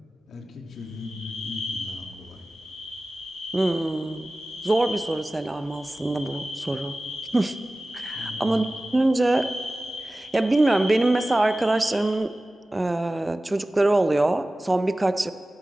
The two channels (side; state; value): both; normal; correlation 0.96